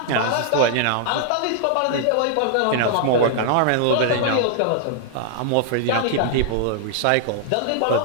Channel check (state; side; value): different; both; correlation -0.01